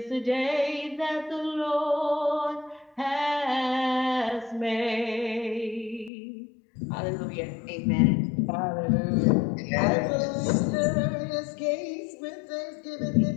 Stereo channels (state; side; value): drops out; right; at 6.1 s